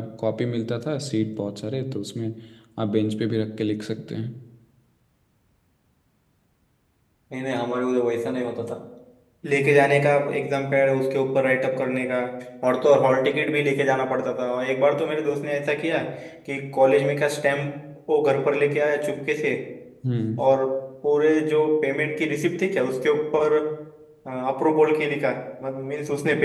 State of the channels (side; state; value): both; identical; correlation 1.00